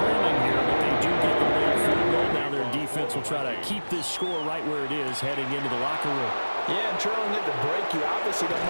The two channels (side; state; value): both; inverted; correlation -1.00